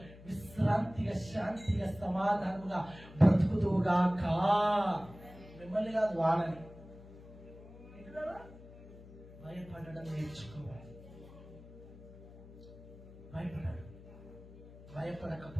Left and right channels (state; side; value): noise; left; hum, 18 dB below the sound